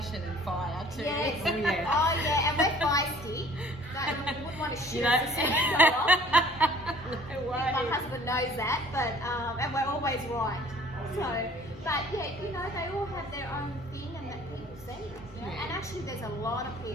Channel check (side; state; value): both; normal; correlation 0.52